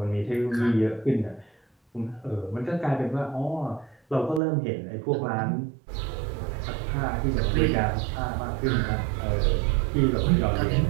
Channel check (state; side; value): drops out; left; at 4.4 s